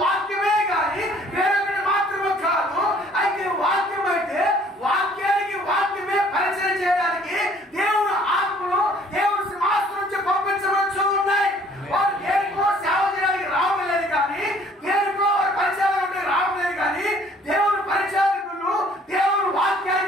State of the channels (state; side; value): normal; both; correlation 0.57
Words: వాక్యమే కానీ వేరొకటి మాత్రమే కాదు. అయితే వాక్యం అయితే వాక్యానికి వాక్యమే పరిచయం చేయడానికి దేవుడు ఆత్మలు దేవుడు సింహాసనం నుంచి పంపించవచ్చు ఉన్నాయి. వారు దేనికో సేవ చేయడానికి రావలేదు, కానీ దేనికో పరిచయాలు రావలేదు, కానీ దేవుడు పరిచారకులు దేవుడు